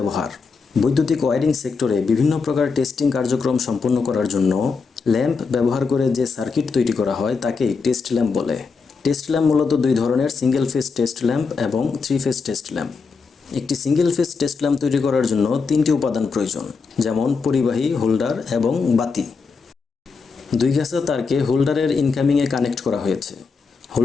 বৈদ্যুতিক ওয়্যারিং সেক্টরে বিভিন্ন প্রকার টেস্টিং কার্যক্রম সম্পন্ন করার জন্য ল্যাম্প ব্যবহার করে যে সার্কিট তৈরি করা হয় তাকেই টেস্ট ল্যাম্প বলে। টেস্ট ল্যাম্প মূলত দুই ধরনের, সিঙ্গেল ফেজ টেস্ট ল্যাম্প এবং থ্রি ফেজ টেস্ট ল্যাম্প। একটি সিঙ্গেল ফেজ টেস্ট ল্যাম্প তৈরি করার জন্য তিনটি উপাদান প্রয়োজন, যেমন পরিবাহী, হোল্ডার এবং বাতি। দুই গাছা তারকে হোল্ডারের ইনকামিংয়ে কানেক্ট করা হয়েছে।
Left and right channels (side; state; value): right; quieter; 4.9 dB